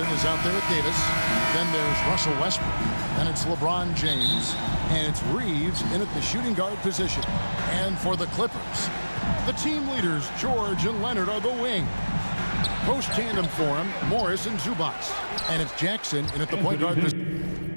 is out there with Davis. Then there's Russell Westbrook. Then it's LeBron James. And it's Reeves in at the shooting guard position. And for the Clippers, the team leaders, George and Leonard, are the wing. Post tandem for him, Morris and Zubac. And it's Jackson in at the point guard position.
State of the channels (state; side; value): inverted; both; correlation -1.00